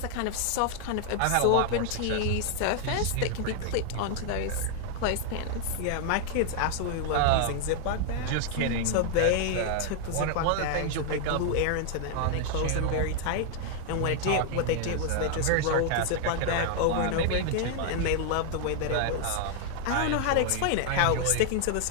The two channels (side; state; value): both; different; correlation 0.00